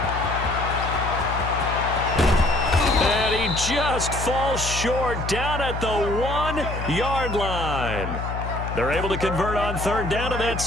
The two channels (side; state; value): left; noise; hum, 5 dB below the sound